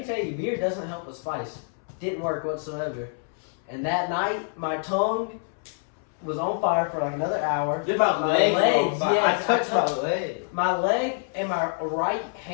tell you, beer doesn't help with spice. Didn't work whatsoever. And that night, my tongue was on fire for like another hour. Did my My legs? legs, I yes, touched my leg. My leg and my right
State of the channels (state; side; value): silent; right; 61 dB below the other